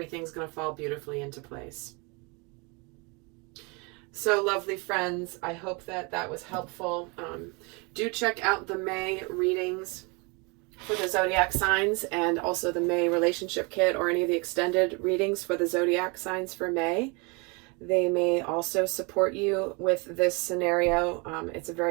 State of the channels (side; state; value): left; quieter; 30.3 dB